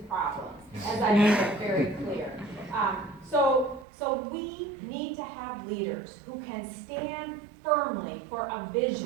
problems, as I make it very clear. So we need to have leaders who can stand firmly for a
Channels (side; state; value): left; drops out; at 3.9 s